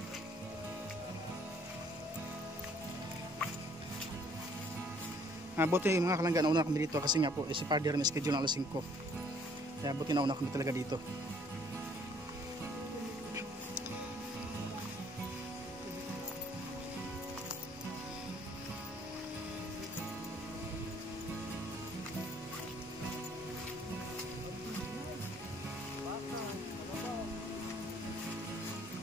Buti mga kalangga, nauna kami dito kasi nga po si Father may schedule ng alas 5. Kaya buti nauna kami talaga dito.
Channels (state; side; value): normal; both; correlation 0.61